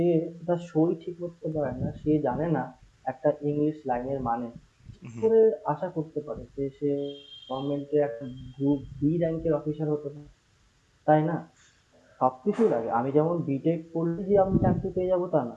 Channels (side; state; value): both; identical; correlation 1.00